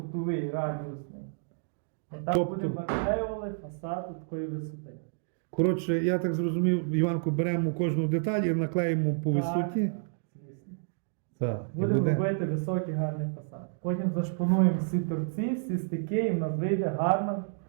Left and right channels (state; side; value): silent; left; digital silence